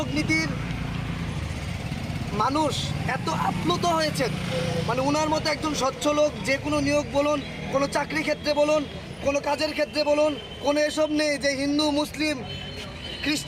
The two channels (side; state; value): both; identical; correlation 1.00